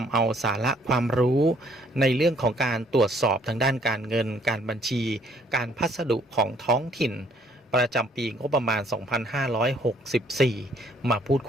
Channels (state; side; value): normal; both; correlation 0.63